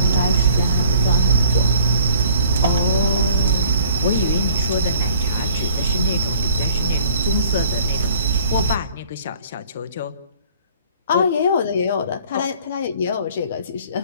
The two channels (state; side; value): inverted; both; correlation -0.53